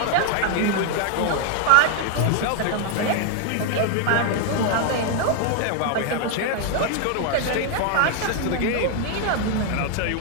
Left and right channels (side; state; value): both; different; correlation 0.00